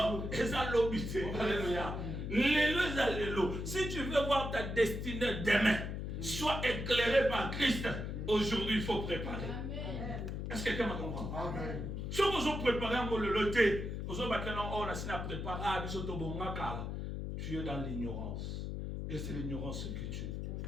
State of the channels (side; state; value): left; noise; hum, 4 dB below the sound